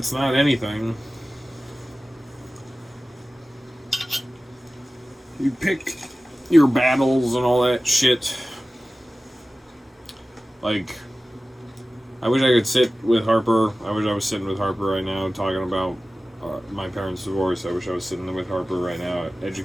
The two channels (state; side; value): normal; both; correlation 0.96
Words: not anything. You pick your battles and all that shit. Like, I wish I could sit with Harper. I wish I was sitting with Harper right now talking about my parents' divorce. I wish I was sitting with Harper right now,